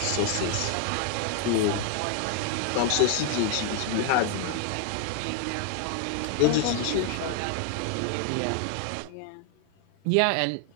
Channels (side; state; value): both; different; correlation 0.00